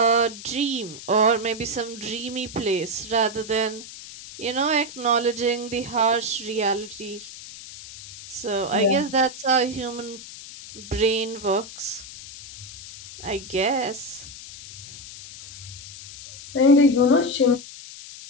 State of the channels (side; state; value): left; noise; hiss, 14 dB below the sound